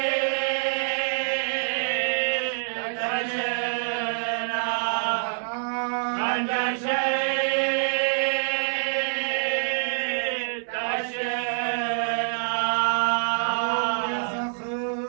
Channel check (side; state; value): left; silent; 61 dB below the other